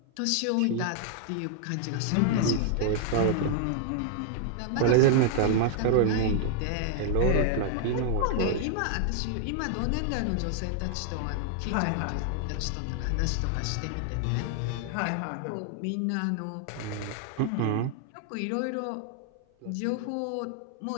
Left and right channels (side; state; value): both; different; correlation 0.00